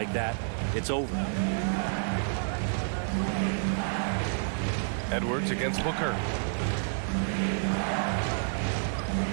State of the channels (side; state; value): left; silent; 56 dB below the other